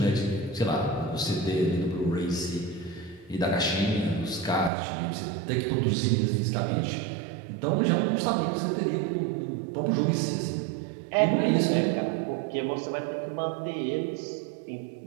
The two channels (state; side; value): drops out; left; at 4.7 s